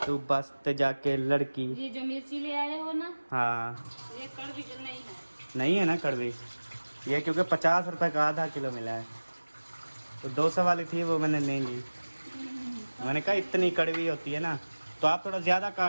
तू बस तो जाके लड़की। ये जो मिर्ची ले आए हो ना, हाँ ये कड़वी तो नहीं है। नहीं है ना कड़वी, ये क्योंकि 50 रुपए का आधा किलो मिला है, तो 200 वाली थी वो मैंने नहीं ली। मैंने कहा इतनी कड़वी होती है ना, तो आप थोड़ा ज़्यादा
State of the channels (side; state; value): both; inverted; correlation -1.00